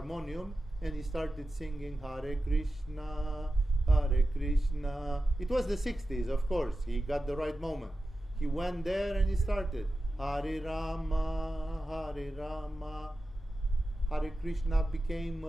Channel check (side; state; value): both; normal; correlation 0.93